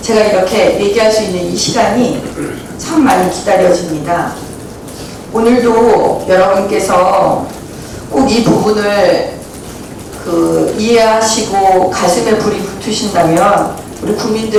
제가 이렇게 얘기할 수 있는 이 시간이 참 많이 기다려집니다. 오늘도 여러분께서 꼭 이 부분을 이해하시고 가슴에 불이 붙으신다면 우리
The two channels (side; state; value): both; identical; correlation 1.00